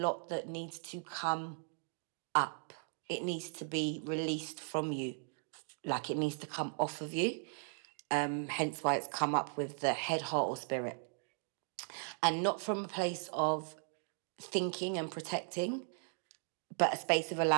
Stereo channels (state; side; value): silent; left; 53 dB below the other